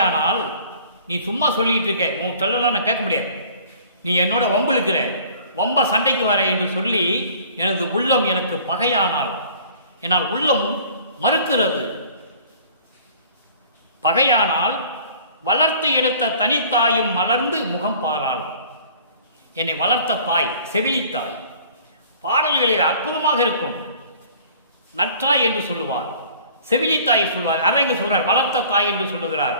நீ சும்மா சொல்லிட்டு இருக்க, உன் சொல்லலாம் நான் கேட்க முடியாது, நீ என்னோட வம்புழுக்கிற, வம்ப சண்டைக்கு வர என்று சொல்லி எனது உள்ளம் எனக்கு பகையானால், என்னால் உள்ளமும் மறுக்கிறது. பகையானால் வளர்த்து எடுத்த தனித்தாயும் மலர்ந்து முகம் பாராள். என்னை வளர்த்த தாய், செவிலித்தாய். பாடல்களில் அற்புதமாக இருக்கும். நற்றாய் என்று சொல்லுவார், செவிலித்தாய் சொல்வார். அதை இங்கு சொல்றார், வளர்த்த தாய் என்று சொல்லுகிறார்.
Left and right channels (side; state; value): both; inverted; correlation -0.50